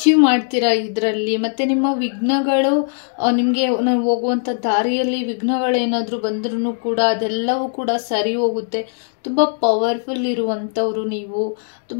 ಮಾಡ್ತೀರಾ ಇದರಲ್ಲಿ. ಮತ್ತು ನಿಮ್ಮ ವಿಘ್ನಗಳು ನಿಮಗೆ ಹೋಗುವಂಥ ದಾರಿಯಲ್ಲಿ ವಿಘ್ನಗಳೇನಾದರೂ ಬಂದ್ರೂ ಕೂಡ ಅದೆಲ್ಲವೂ ಕೂಡ ಸರಿ ಹೋಗುತ್ತೆ. ತುಂಬ ಪವರ್ಫುಲ್ ಇರುವಂಥವ್ರು ನೀವು.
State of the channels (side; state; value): right; silent; digital silence